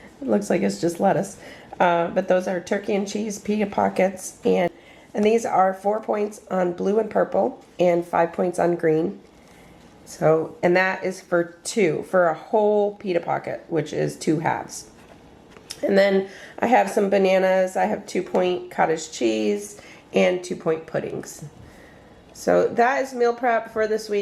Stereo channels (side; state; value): both; identical; correlation 1.00